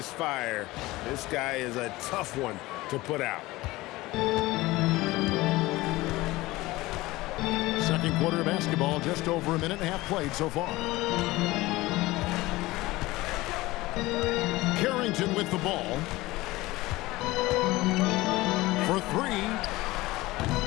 fire, this guy is a tough one to put out. Second quarter of basketball, just over a minute and a half played so far. Carrington with the ball. For three.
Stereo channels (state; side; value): quieter; right; 19.4 dB